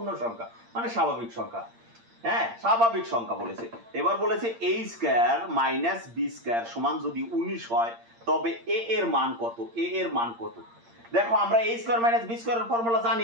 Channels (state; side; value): late; left; 8.7 ms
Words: সংখ্যা মানে স্বাভাবিক সংখ্যা। হ্যাঁ স্বাভাবিক সংখ্যা বলেছে। এবার বলেছে a square minus b square সমান যদি 19 হয় তবে a এর মান কত, a এর মান কত। দেখো আমরা a স্কয়ার মাইনাস b স্কয়ারের ফর্মুলা